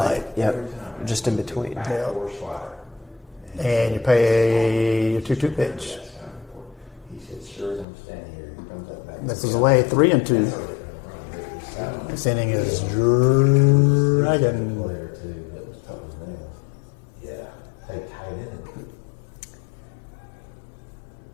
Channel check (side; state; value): right; drops out; at 7.9 s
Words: Light. Yep. Just in between. Yeah. And you pay your 2-2 pitch. Misses away, 3-2. This inning is dragging.